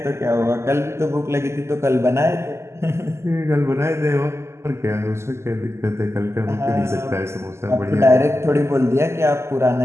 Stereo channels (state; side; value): late; left; 0.13 ms